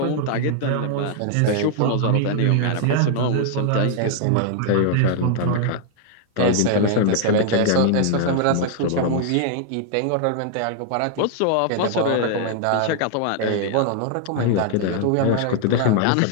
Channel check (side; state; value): both; different; correlation 0.00